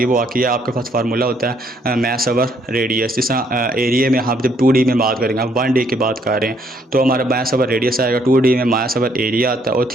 वो आती है आपके पास फार्मूला होता है मैस ओवर रेडियस। जिस तरह एरिया में हम जब 2D में बात करेंगे, हम 1D की बात कर रहे हैं तो हमारा मैस ओवर रेडियस आएगा, 2D में मैस ओवर एरिया आता है और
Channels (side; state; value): both; normal; correlation 0.68